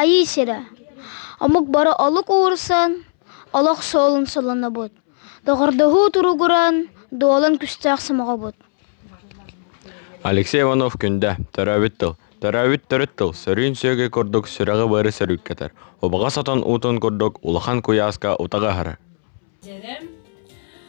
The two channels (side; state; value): right; silent; 67 dB below the other